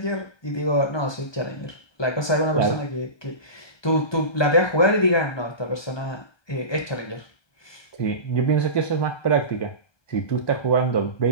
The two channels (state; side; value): late; right; 1.2 ms